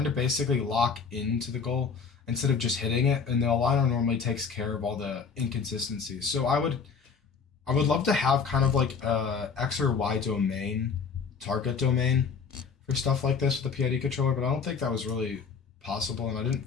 to basically lock into the goal instead of just hitting it, and the aligner normally takes care of all the inconsistencies. So I would love to have kind of like a X or Y domain, target domain, for stuff like this with the PID controller, but I don't think that was really possible, and I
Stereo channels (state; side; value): quieter; right; 5.7 dB